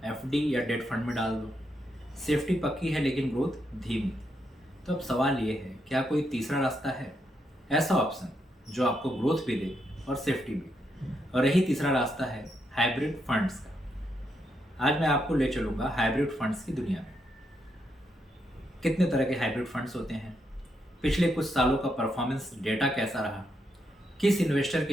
एफडी या डेट फंड में डाल दो। सेफ्टी पक्की है लेकिन ग्रोथ धीमी। तो अब सवाल ये है, क्या कोई तीसरा रास्ता है, ऐसा ऑप्शन जो आपको ग्रोथ भी दे और सेफ्टी भी। और यही तीसरा रास्ता है हाइब्रिड फंड्स का। आज मैं आपको ले चलूंगा हाइब्रिड फंड्स की दुनिया में। कितने तरह के हाइब्रिड फंड्स होते हैं, पिछले कुछ सालों का परफॉर्मेंस डेटा कैसा रहा, किस इन्वेस्टर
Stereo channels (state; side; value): normal; both; correlation 0.80